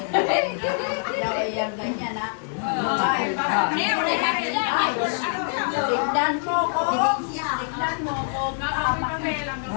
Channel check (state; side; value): silent; right; digital silence